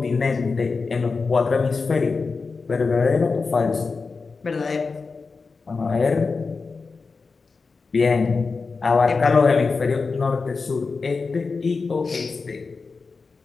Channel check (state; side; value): quieter; right; 4.5 dB